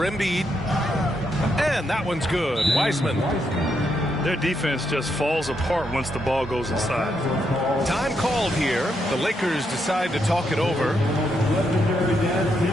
Embiid. And that one's good. Wiseman. Their defense just falls apart once the ball goes inside. Time called here. The Lakers decide to talk it over. Legendary dance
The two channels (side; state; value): both; normal; correlation 0.79